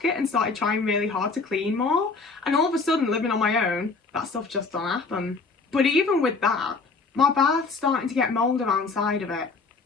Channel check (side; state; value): right; quieter; 4.2 dB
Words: it and started trying really hard to clean more. And all of a sudden, living on my own, that stuff just don't happen. But even with that, my bath's starting to get mould around the side of it.